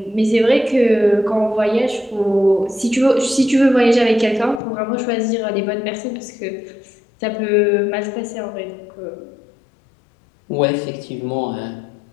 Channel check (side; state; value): right; drops out; at 4.6 s